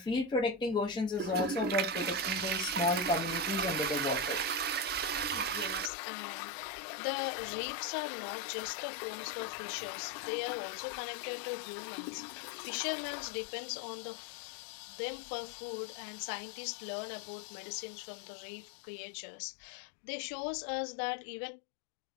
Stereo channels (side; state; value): right; drops out; at 5.9 s